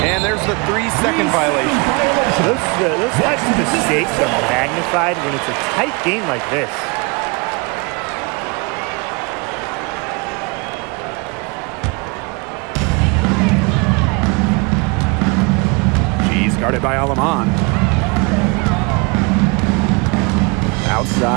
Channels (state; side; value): quieter; left; 29.5 dB